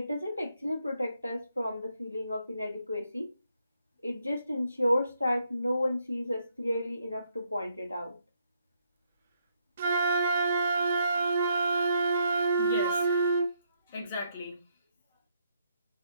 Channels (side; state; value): both; inverted; correlation -0.76